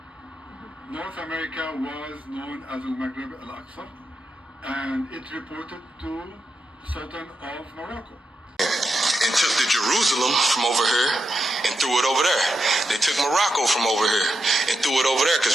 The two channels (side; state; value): both; normal; correlation 0.86